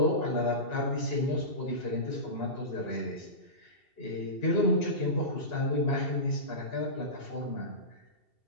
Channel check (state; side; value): late; right; 2.7 ms